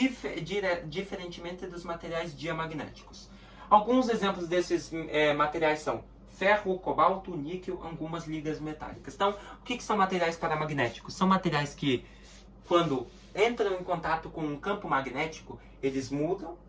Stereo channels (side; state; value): both; identical; correlation 1.00